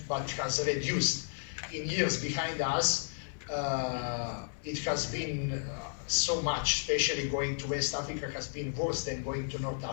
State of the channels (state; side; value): silent; right; 56 dB below the other